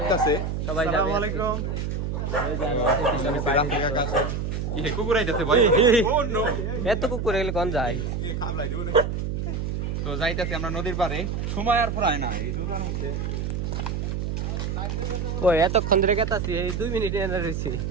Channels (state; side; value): noise; right; hum, 2 dB below the sound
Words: সবাই যাবে। আসসালামু আলাইকুম। এই কুকুর আইতাছে ভাই। ও নো, এত কুকুর এগুলো কোন যায়? তো যাইতাছি আমরা নদীর পাড়ে। সময় আর ফুরায় না এই দুটার মধ্যে। ওই এতক্ষণ ধরে কেতাছি, এই 2 মিনিট এনে রইছি।